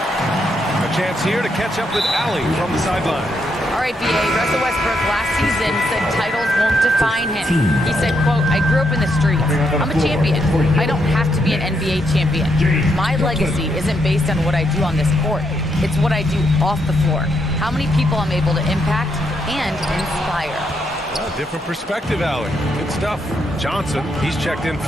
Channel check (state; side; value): normal; both; correlation 0.78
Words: A chance here to catch up with Allie from the sideline. All right, B.A. Russell Westbrook last season said titles won't define him. He said, quote, I grew up in the streets. I'm a champion. I don't have to be an NBA champion. My legacy isn't based on what I do on this court. It's what I do off the floor. How many people I'm able to impact and inspire. Well, different perspective, Allie. Good stuff. Johnson, he's checked in